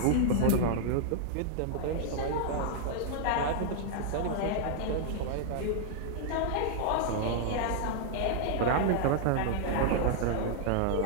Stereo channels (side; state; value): both; different; correlation -0.01